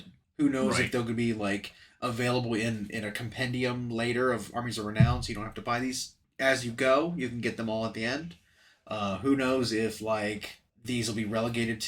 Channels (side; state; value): both; identical; correlation 1.00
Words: Who knows if they'll be like available in a compendium later of Armies of Renown, so you don't have to buy these as you go. You can get them all at the end. Who knows if like these will be relegated